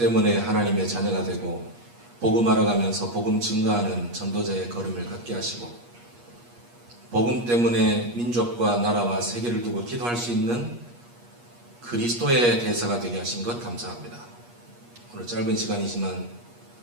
하나님의 자녀가 되고 복음 알아가면서 복음 증거하는 전도자의 걸음을 걷게 하시고 복음 때문에 민족과 나라와 세계를 두고 기도할 수 있는 그리스도의 대사가 되게 하신 것 감사합니다. 오늘 짧은 시간이지만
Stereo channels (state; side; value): late; left; 8.4 ms